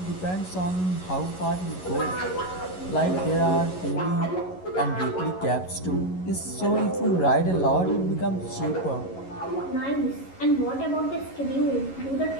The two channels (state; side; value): late; right; 11 ms